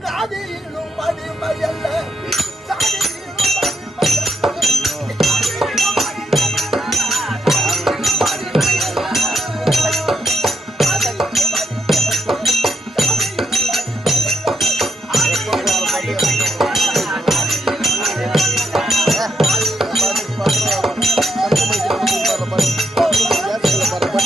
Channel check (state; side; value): normal; both; correlation 0.78